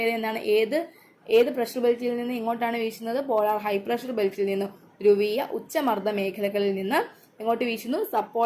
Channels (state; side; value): identical; both; correlation 1.00